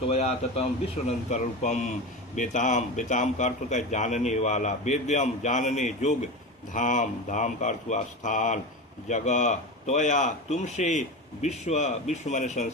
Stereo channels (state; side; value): normal; both; correlation 0.24